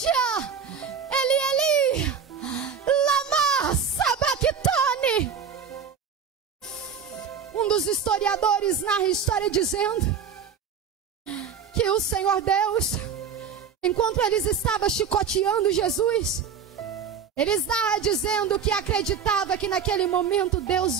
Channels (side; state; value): left; quieter; 6.7 dB